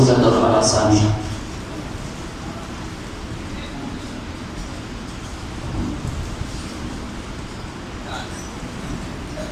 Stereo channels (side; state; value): both; identical; correlation 1.00